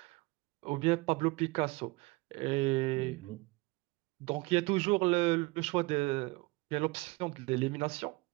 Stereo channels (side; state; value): left; quieter; 23.6 dB